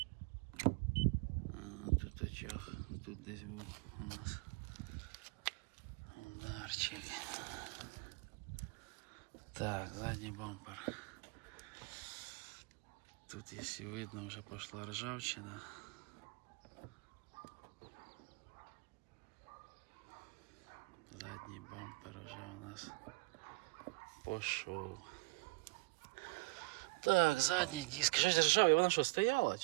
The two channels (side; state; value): left; quieter; 26.7 dB